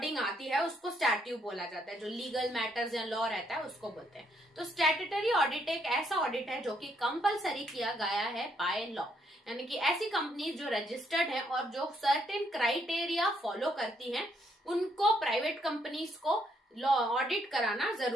आती है उसको स्टैट्यू बोला जाता है। जो लीगल मैटर्स या लॉ रहता है उसको बोलते हैं। तो स्टैट्यूटरी ऑडिट एक ऐसा ऑडिट है जो कि कंपलसरी किया गया है बाय लॉ, यानी कि ऐसी कंपनी जो रजिस्टर्ड है और जो सर्टेन क्राइटेरिया फॉलो करती हैं उनको प्राइवेट कंपनीज को लॉ ऑडिट कराना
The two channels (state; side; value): normal; both; correlation 0.72